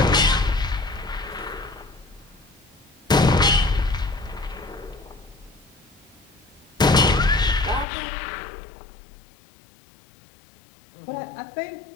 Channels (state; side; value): drops out; right; at 7.9 s